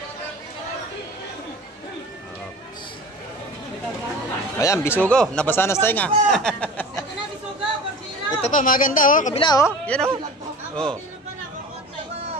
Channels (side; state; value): both; normal; correlation 0.38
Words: Oh. Ayan, bisugo. Nabasa na sa tinga. Ito pa, maganda, oh. Kabila, oh. Yan, oh. Oh.